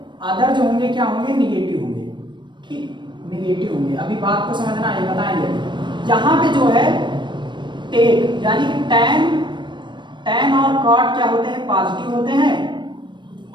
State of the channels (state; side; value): late; left; 0.22 ms